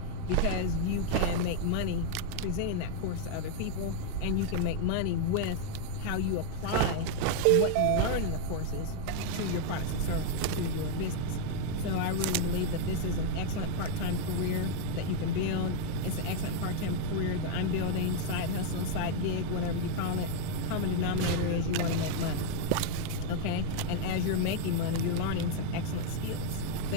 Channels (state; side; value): different; both; correlation 0.00